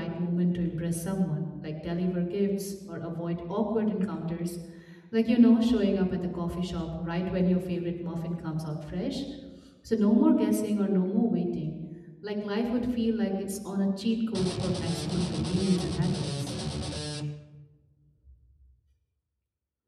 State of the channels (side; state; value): both; identical; correlation 1.00